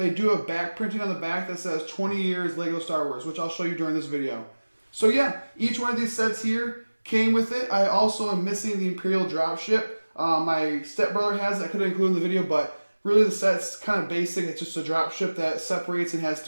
do have back printing on the back that says 20 years LEGO Star Wars, which I'll show you during this video. So yeah, each one of these sets here came with it. I also am missing the Imperial dropship. My stepbrother has it. I could have included in the video, but really the set's kind of basic. It's just a dropship that separates and has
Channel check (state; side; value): inverted; both; correlation -1.00